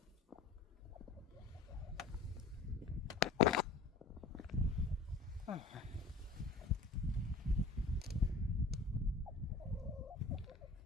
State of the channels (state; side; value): quieter; right; 3.8 dB